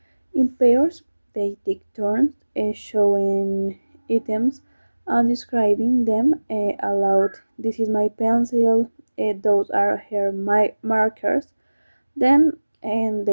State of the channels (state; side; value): inverted; both; correlation -1.00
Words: in pairs. They take turns showing items and describing them aloud. This is my pencil, those are her my markers. Then and